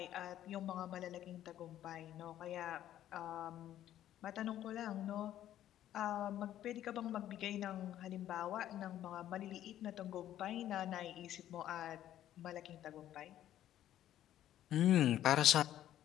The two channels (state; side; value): quieter; right; 12.1 dB